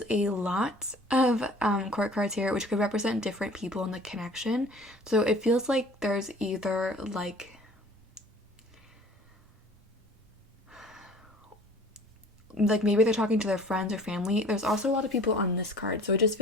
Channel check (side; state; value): both; normal; correlation 0.48